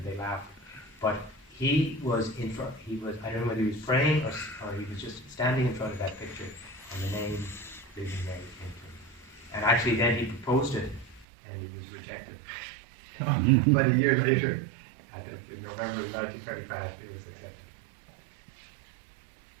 they laughed. But he was in front, I don't know whether he was praying or he was just standing in front of that picture, and the name Legion Mary came to him. And actually then he proposed it, and he was rejected. But a year later, in November 1935, it was accepted.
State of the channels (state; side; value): drops out; left; at 11.2 s